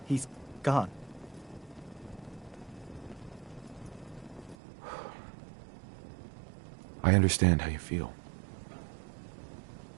gone. I understand how you feel.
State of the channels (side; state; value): left; drops out; at 4.5 s